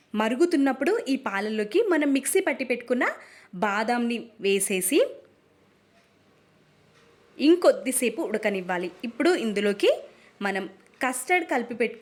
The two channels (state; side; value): identical; both; correlation 1.00